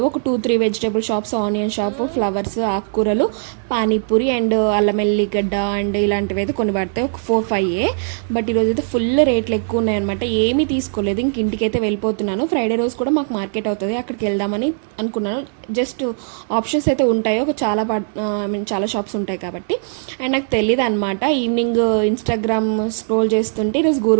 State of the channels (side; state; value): left; silent; digital silence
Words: ఒక 2-3 vegetable shops, onion shop, flowers, ఆకుకూరలు, పానీపూరి అండ్ అల్లం ఎల్లిగడ్డ అండ్ ఇలాంటివి అయితే కొన్ని పడతాయి. ఒక 4-5. బట్ ఈరోజు అయితే ఫుల్ రేట్లు ఎక్కువ ఉన్నాయన్నమాట. ఏమీ తీసుకోలేదు, ఇంక ఇంటికి అయితే వెళ్ళిపోతున్నాను. ఫ్రైడే రోజు కూడా మాకు మార్కెట్ అవుతుంది, అక్కడికి వెళ్దామని అనుకున్నాను. జస్ట్ ఆప్షన్స్ అయితే ఉంటాయి, ఒక ఐ మీన్ చాలా షాప్స్ ఉంటాయి కాబట్టి. అండ్ నాకు తెలియదు అనమాట. ఈవినింగ్ ఇన్స్టాగ్రామ్ స్క్రోల్ చేస్తుంటే ఈరోజు